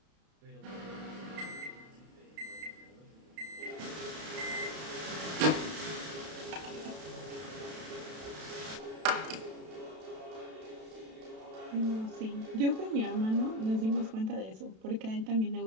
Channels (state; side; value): late; left; 32 ms